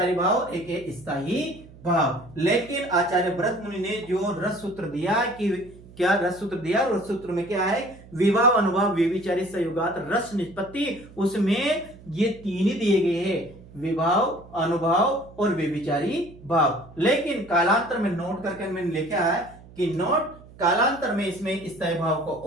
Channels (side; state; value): right; noise; hum, 21 dB below the sound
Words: भाव, एक है स्थायी भाव। लेकिन आचार्य भरत मुनि ने जो रस सूत्र दिया कि क्या रस सूत्र दिया, रस सूत्र में क्या है, विभाव, अनुभाव, व्यभिचारी संयुगात रस निष्पत्ति, उसमें ये 3 ही दिए गए हैं, विभाव, अनुभाव और व्यभिचारी भाव। लेकिन कालांतर में नोट करके मैंने लिखा है कि नोट कालांतर में इसमें स्थायी भाव को